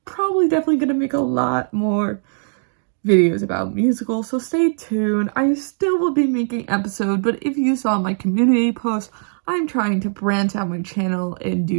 probably definitely going to make a lot more videos about musicals, so stay tuned. I still will be making episodes, but if you saw my community post, I'm trying to branch out my channel and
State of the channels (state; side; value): silent; left; digital silence